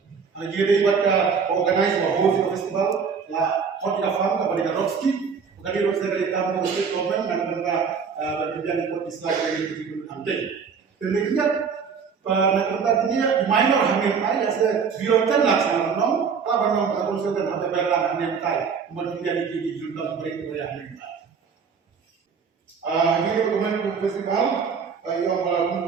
Ada juga dari pada organize bahwa festival lah hot ika farm kepada Rockski, kepada Rockski dari kampung state government dan mereka bekerja di kota Islam dari itu nanti. Dan ingat nak dia minor hamil tay, ada birotan laksana nom, kalau nom pada konsep dan ada berlang hamil tay, kemudian di junta mereka hamil tay. Ini dokumen festival,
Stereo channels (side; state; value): left; quieter; 6.0 dB